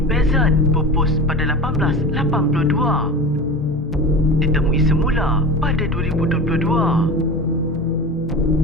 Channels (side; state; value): both; normal; correlation 0.30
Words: pupus pada 1882. Ditemui semula pada 2022.